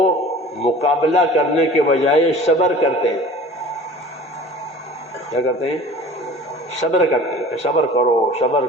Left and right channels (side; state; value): both; normal; correlation 0.43